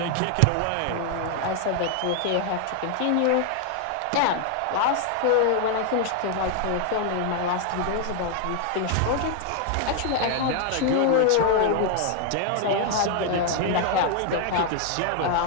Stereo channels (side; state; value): both; different; correlation 0.00